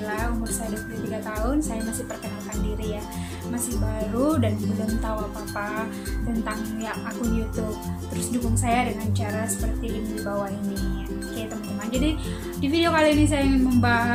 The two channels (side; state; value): both; identical; correlation 1.00